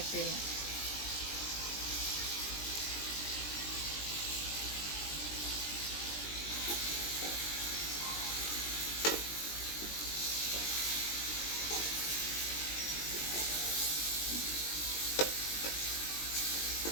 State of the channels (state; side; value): late; right; 20 ms